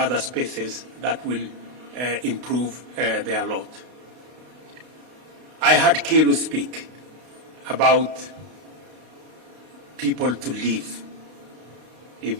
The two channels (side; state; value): left; late; 32 ms